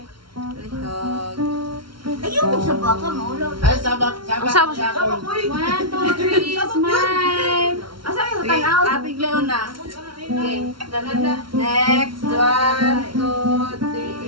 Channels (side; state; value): left; late; 0.74 ms